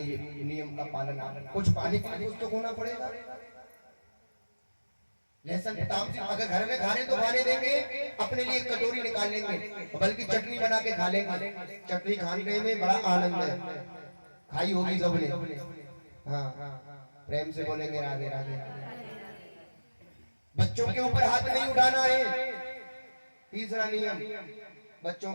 नियम का पालन, कुछ पानी के लिए कुछ तो खोना पड़ेगा। लहसुन तामसिक अगर घर में खाने तो खाने देंगे, अपने लिए कटोरी निकाल लेंगे, बल्कि चटनी बना के खा लेंगे। चटनी खाने में बड़ा आनंद है, खाई होगी सबने। हाँ, प्रेम से बोलेंगे राधे राधे। बच्चों के ऊपर हाथ नहीं उठाना है, तीसरा नियम, बच्चों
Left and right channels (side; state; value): both; inverted; correlation -1.00